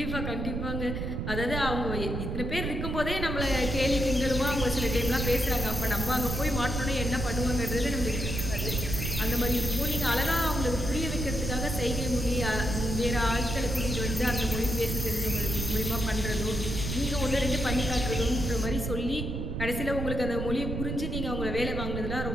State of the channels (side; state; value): right; noise; rumble, 3 dB below the sound